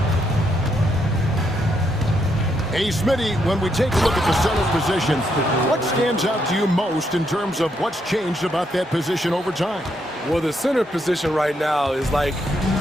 Hey, Smitty, when we take a look at the center position, what stands out to you most in terms of what's changed about that position over time? Well, the center position right now is like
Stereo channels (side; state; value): both; normal; correlation 0.77